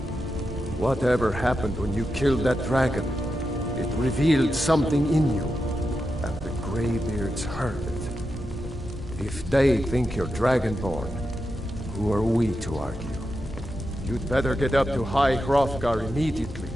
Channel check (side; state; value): both; normal; correlation 0.88